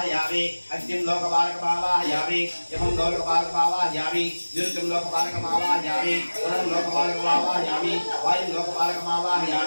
అగ్నిం లోకపాలక వావాహయామి యమం లోకపాలక వావాహయామి నిరుతం లోకపాలక వావాహయామి వరుణం లోకపాలక వావాహయామి వాయుం లోకపాలక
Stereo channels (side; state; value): both; inverted; correlation -1.00